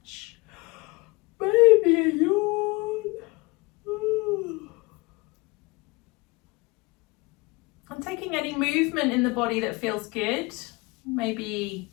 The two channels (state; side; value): quieter; right; 25.3 dB